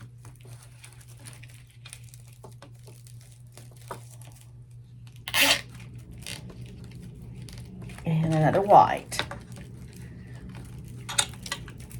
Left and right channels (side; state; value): both; identical; correlation 1.00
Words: And another white.